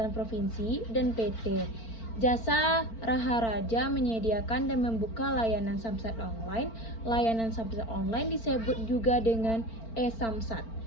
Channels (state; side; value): late; right; 4.4 ms